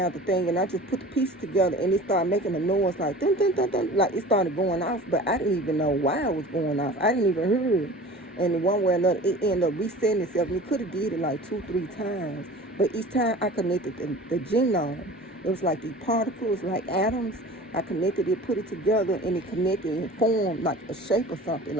the thing and I just put the pieces together and it started making a noise like dun, dun, dun, dun, like it started going off, but I didn't even know why it was going off. I didn't even hear it. And one way or another, it ended up resetting itself. And it could have did it like 2-3 times. But each time I connected the genome, it was like these particles, like atoms. I connected it, put it together, and it connected and formed like a shape or something.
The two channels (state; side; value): normal; both; correlation 0.40